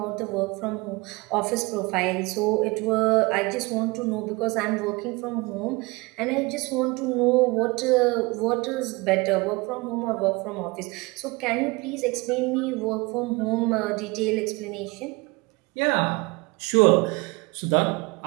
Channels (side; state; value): left; quieter; 25.0 dB